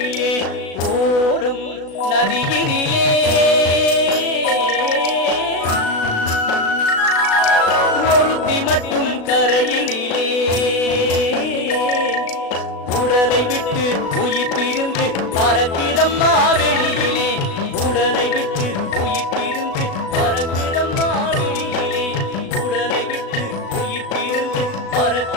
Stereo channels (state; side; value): late; right; 36 ms